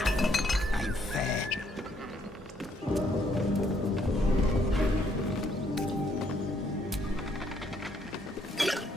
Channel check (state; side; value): normal; both; correlation 0.69